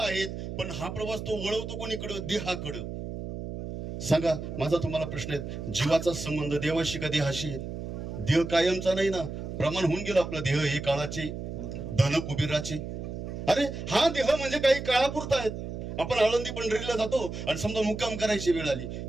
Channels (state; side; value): noise; right; hum, 7 dB below the sound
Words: आहे, पण हा प्रवास तो वळवतो कोणीकडे? देहाकडे. सांगा, माझा तुम्हाला प्रश्न आहे, जीवाचा संबंध देवाशी का देहाशी आहे? देह कायमचा नाही ना, प्रमाण होऊन गेलं आपलं. देह हे काळाचे, धन कुबेराचे. अरे हा देह म्हणजे काही काळापुरता आहेत. आपण आळंदी पंढरीला जातो आणि समजा मुक्काम करायची वेळ आली